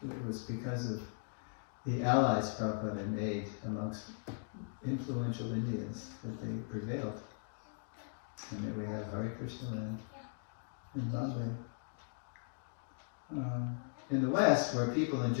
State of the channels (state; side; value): silent; right; digital silence